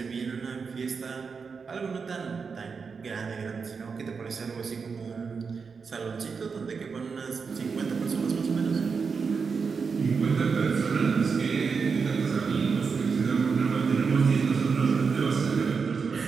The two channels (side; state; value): left; quieter; 5.4 dB